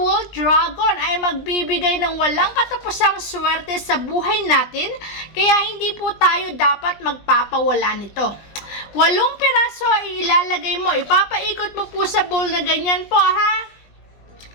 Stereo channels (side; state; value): right; late; 20 ms